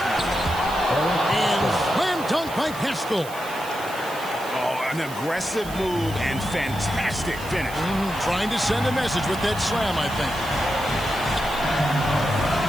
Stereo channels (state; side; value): noise; right; hiss, 16 dB below the sound